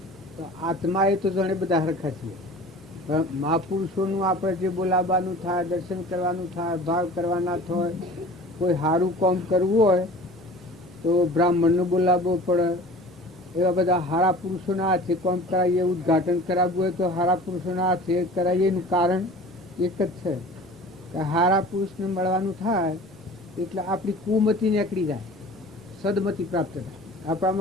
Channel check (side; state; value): both; normal; correlation 0.42